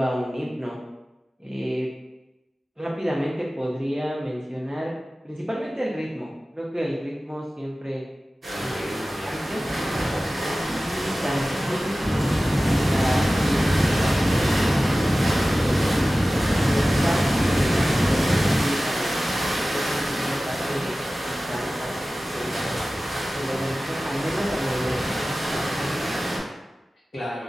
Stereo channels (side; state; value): both; normal; correlation 0.96